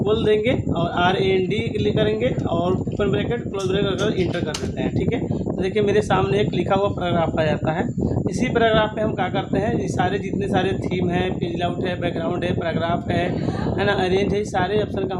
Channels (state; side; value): identical; both; correlation 1.00